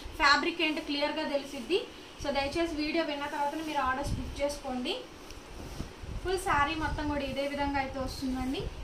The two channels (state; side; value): identical; both; correlation 1.00